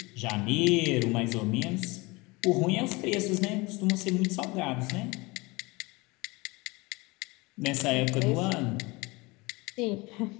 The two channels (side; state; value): right; quieter; 24.5 dB